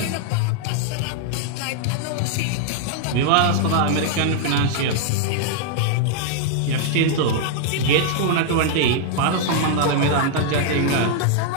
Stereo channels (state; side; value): different; both; correlation -0.01